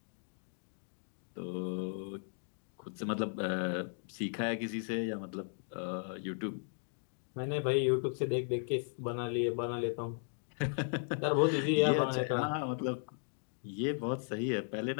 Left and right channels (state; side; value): silent; right; digital silence